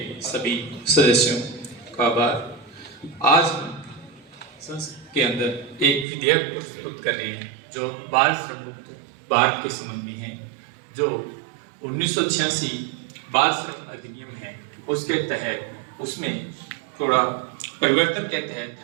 सभी सदस्यों का आभार। आज हम संसद के अंदर एक विधेयक प्रस्तुत कर रहे हैं जो बाल श्रम मुक्त भारत के संबंध में है। जो 1986 बाल श्रम अधिनियम है उसके तहत उसमें थोड़ा परिवर्तन के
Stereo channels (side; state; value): left; drops out; at 6.1 s